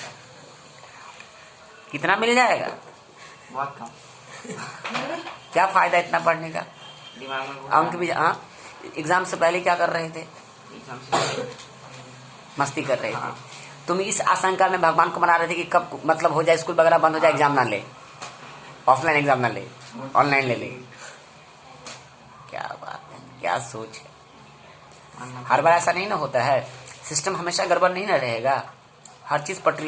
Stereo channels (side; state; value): both; identical; correlation 1.00